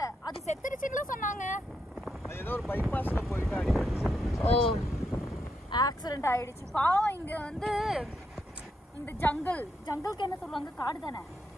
அது செத்துருச்சுன்னு சொன்னாங்க. ஏதோ ஒரு பைபாஸ்ல போயிட்டு அடிச்சு ஆக்சிடென்ட் ஆயிடுச்சு. பாவம். இங்க வந்து இந்த ஜங்கலுக்கு என்ன சொல்லுவாங்க, காடு தானே.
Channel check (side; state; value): both; normal; correlation 0.81